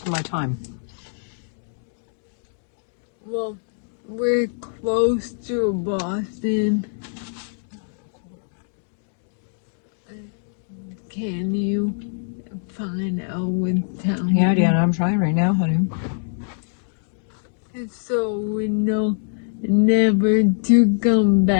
my time. Well, we're close to Boston. Can you find out what town? Yeah, Deanna, I'm trying right now, honey. So we know never to come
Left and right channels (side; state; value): right; silent; digital silence